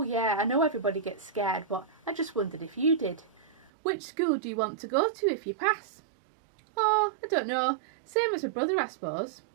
yeah, I know everybody gets scared, but I just wondered if you did. Which school do you want to go to if you pass? Oh, I don't know. Same as my brother, I suppose.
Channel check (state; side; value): drops out; left; at 3.7 s